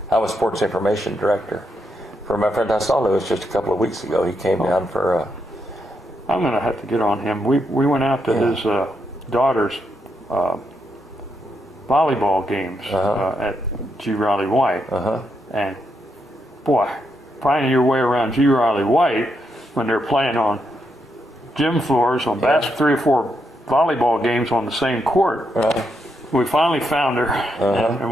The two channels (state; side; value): normal; both; correlation 0.81